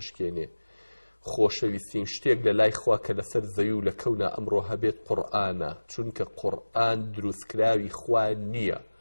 خۆشەویستین شتێک لە لای خوا کە لەسەر زەوی و لە کەونا ئەمڕۆ هەبێت قورئانە، چونکە قورئان دروستکراوی خوا نییە،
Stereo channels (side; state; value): both; inverted; correlation -1.00